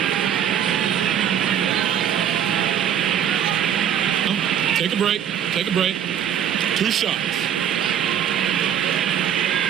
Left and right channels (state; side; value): quieter; left; 9.4 dB